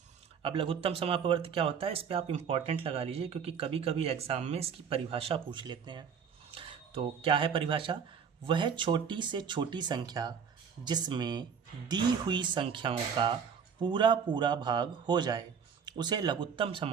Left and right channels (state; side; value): quieter; left; 6.9 dB